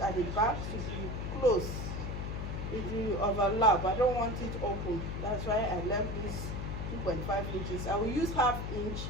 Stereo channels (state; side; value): noise; left; hum, 4 dB below the sound